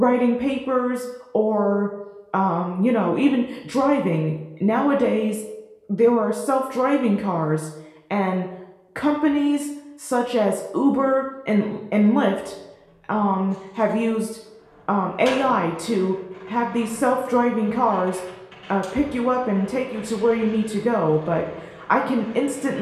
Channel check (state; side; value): identical; both; correlation 1.00